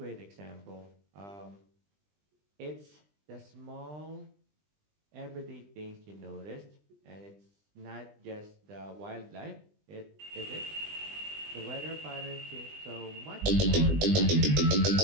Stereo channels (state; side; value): late; left; 20 ms